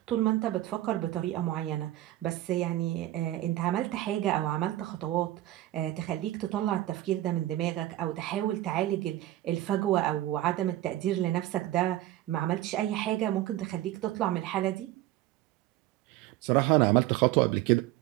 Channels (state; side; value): quieter; left; 14.9 dB